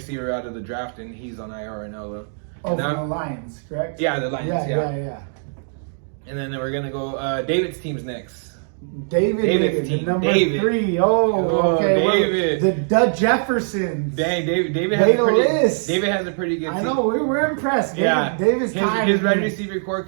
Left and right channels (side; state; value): left; silent; digital silence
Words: out of the draft, and he's on IR right now though. Oh, from the Lions, correct? Yeah, the Lions. Yeah. And then we're gonna go. David's team's next. David's team. Number 3. Oh, okay. David. The Jeffersons. Dang, David has a pretty good team. I know, we're impressed. David's tired. His wide receiver core